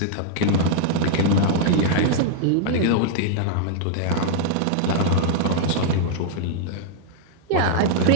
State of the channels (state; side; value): different; both; correlation -0.01